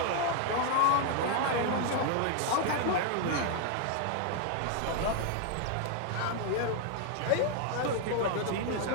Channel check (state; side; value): different; both; correlation 0.00